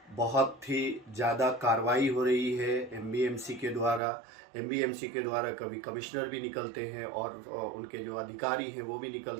बहुत ही ज़्यादा कार्रवाई हो रही है एमबीएमसी के द्वारा। एमबीएमसी के द्वारा कभी कमिश्नर भी निकलते हैं और उनके जो अधिकारी हैं वो भी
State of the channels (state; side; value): drops out; left; at 4.0 s